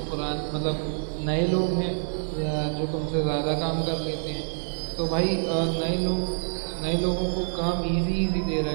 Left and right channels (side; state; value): left; silent; digital silence